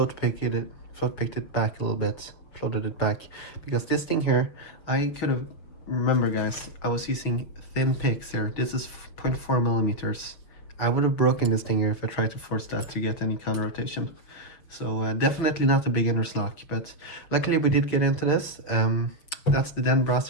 picked it back a little bit, floated it back, because this thing here, I could have, remember guys, I was using thin picks here. This is 0.4 millimeters. I would have broken this thing here if I tried to force that to get any counter rotation. So definitely not a beginner's lock, but luckily we did get into this. That's the Den Brass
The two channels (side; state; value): right; late; 6.5 ms